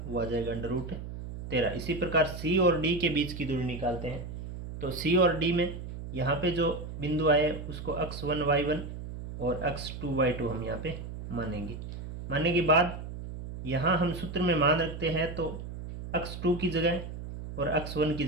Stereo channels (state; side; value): noise; right; hum, 9 dB below the sound